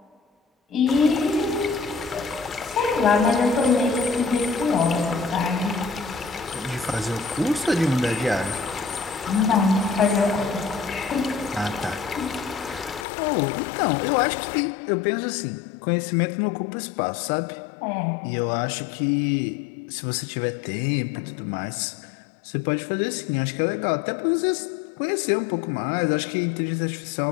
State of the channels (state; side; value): drops out; right; at 13.1 s